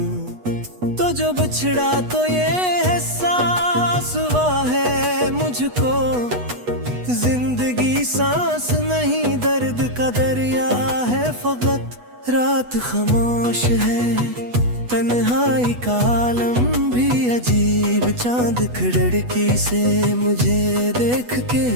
तो जो बिछड़ा तो ये एहसास हुआ है मुझको, जिंदगी सांस नहीं दर्द का दरिया है फकत। रात खामोश है, तन्हाई का आलम भी अजीब। चांद खिड़की से मुझे देख के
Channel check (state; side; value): late; left; 8.2 ms